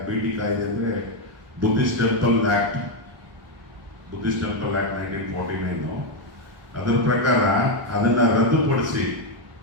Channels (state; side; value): late; left; 1.1 ms